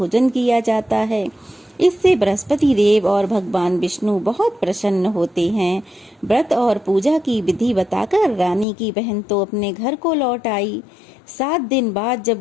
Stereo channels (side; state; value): right; drops out; at 8.7 s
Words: किया जाता है। इससे बृहस्पति देव और भगवान विष्णु बहुत प्रसन्न होते हैं। व्रत और पूजा की विधि बताकर रानी की बहन तो अपने घर को लौट आई। 7 दिन बाद